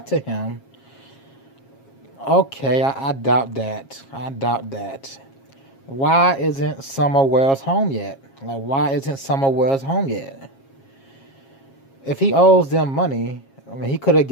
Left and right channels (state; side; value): late; right; 7.4 ms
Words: to him. Okay, I doubt that. I doubt that. Why isn't Summer Wells home yet? Like, why isn't Summer Wells home yet? If he owes them money, I mean, he could have